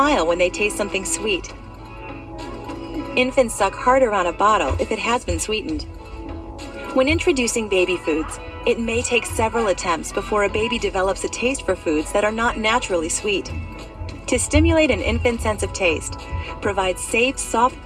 when they taste something sweet. Infants suck harder on a bottle if it has been sweetened. When introducing baby foods, it may take several attempts before a baby develops a taste for foods that are not naturally sweet. To stimulate an infant's sense of taste, provide safe, soft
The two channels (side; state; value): both; identical; correlation 1.00